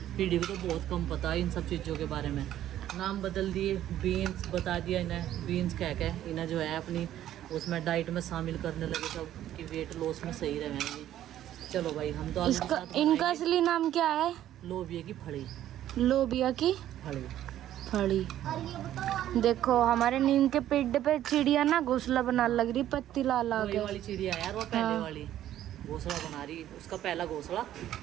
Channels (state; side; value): quieter; left; 12.2 dB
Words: पीढ़ी को तो बहुत कम पता है इन सब चीज़ों के बारे में। नाम बदल दिए, बीन्स बता दिया इन्हें, बीन्स कह के इन्हें जो है अपनी उसमें डाइट में शामिल करने लगे सब कि वेट लॉस में सही रहेंगे। चलो भाई हम तो इसका इनका असली नाम क्या है? लोबिया की फली। लोबिया की फली। फली। देखो हमारे नीम के पेड़ पे चिड़िया ना घोंसला बना लग रही, पत्ती ला ला के। वाली चिड़िया यार, वो पहले वाली घोंसला बना रही, उसका पहला घोंसला